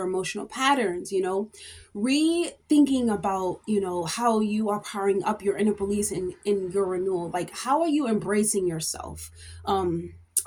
emotional patterns, rethinking about, how you are powering up your inner beliefs in your renewal. Like, how are you embracing yourself,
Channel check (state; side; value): identical; both; correlation 1.00